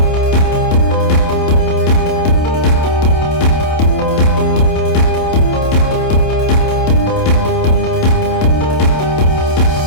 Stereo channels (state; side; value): late; right; 27 ms